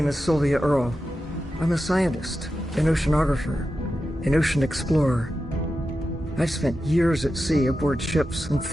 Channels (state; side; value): normal; both; correlation 0.91